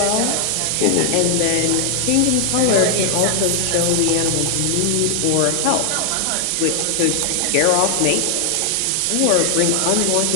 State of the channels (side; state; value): both; different; correlation 0.00